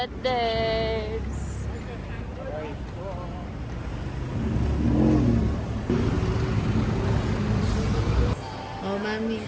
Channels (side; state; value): both; identical; correlation 1.00